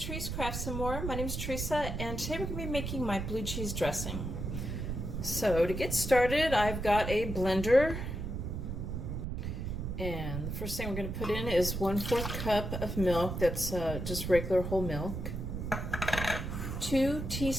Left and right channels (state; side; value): noise; right; rumble, 4 dB below the sound